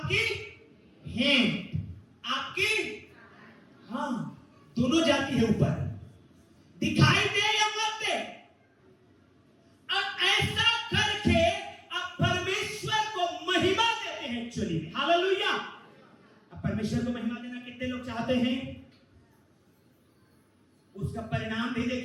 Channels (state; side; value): identical; both; correlation 1.00